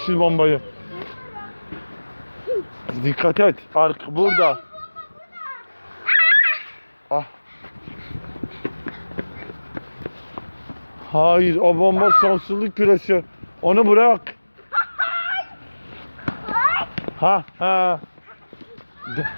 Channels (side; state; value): both; inverted; correlation -1.00